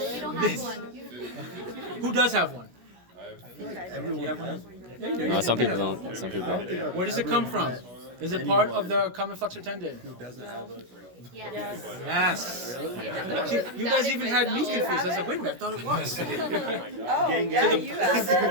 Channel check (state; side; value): late; left; 16 ms